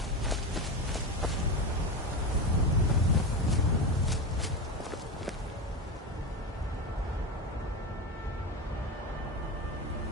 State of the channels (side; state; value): both; normal; correlation 0.19